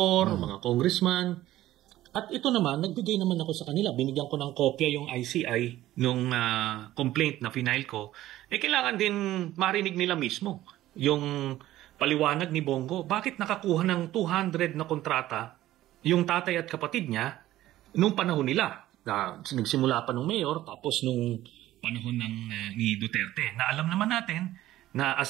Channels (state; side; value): quieter; left; 14.7 dB